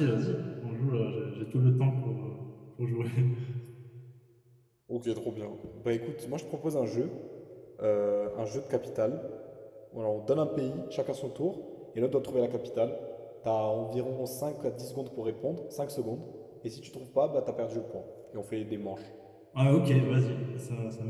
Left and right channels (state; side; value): identical; both; correlation 1.00